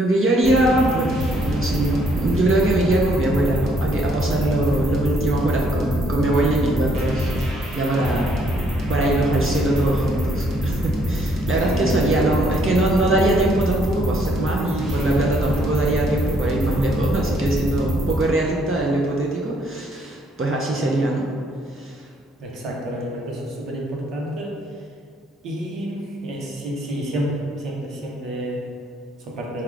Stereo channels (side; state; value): both; normal; correlation 0.67